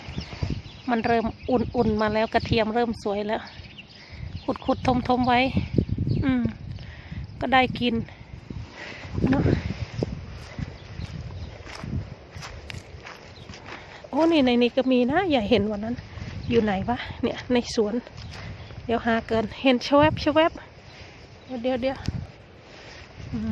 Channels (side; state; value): both; identical; correlation 1.00